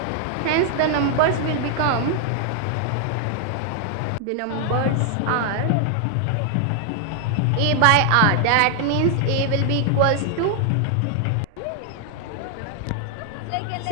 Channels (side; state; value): both; different; correlation 0.00